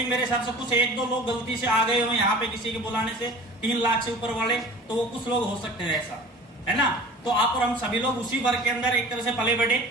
मेरे हिसाब से कुछ 1-2 लोग गलती से आ गए हो यहाँ पे किसी के बुलाने से 3 लाख से ऊपर वाले, तो वो कुछ लोग हो सकते हैं ऐसा, है ना। तो आप और हम सभी लोग उसी वर्ग के अंदर एक तरह से पले बढ़े।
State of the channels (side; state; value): both; normal; correlation 0.42